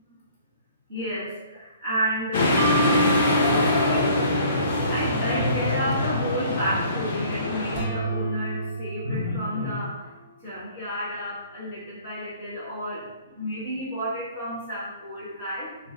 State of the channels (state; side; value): inverted; both; correlation -0.53